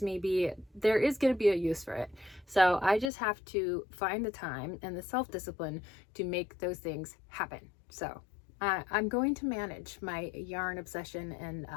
may be, there is going to be a use for it. So I just have to find the time and the self-discipline to make those things happen. So I'm going to manage my yarn obsession and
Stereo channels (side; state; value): right; drops out; at 3.1 s